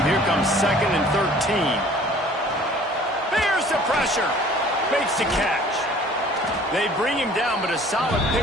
Here comes 2nd and 13. There's the pressure. Makes the catch. They bring him down, but a solid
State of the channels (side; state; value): both; normal; correlation 0.51